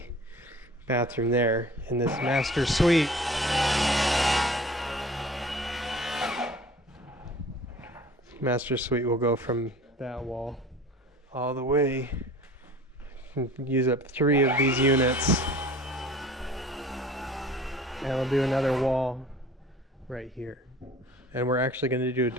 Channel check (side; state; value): both; normal; correlation 0.45